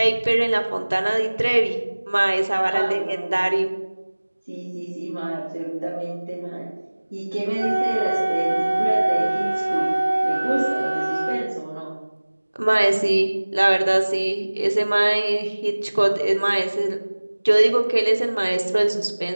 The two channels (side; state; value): both; inverted; correlation -1.00